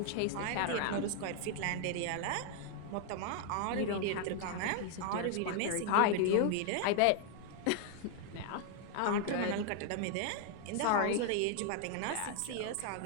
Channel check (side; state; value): both; different; correlation 0.00